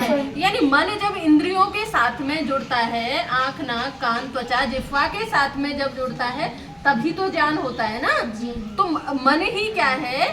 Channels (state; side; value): identical; both; correlation 1.00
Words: यानी मन जब इंद्रियों के साथ में जुड़ता है, आंख नाक कान त्वचा जिह्वा के साथ में जब जुड़ता है तभी तो ज्ञान होता है ना। तो मन ही क्या है?